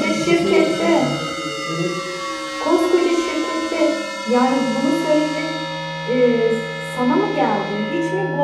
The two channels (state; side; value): identical; both; correlation 1.00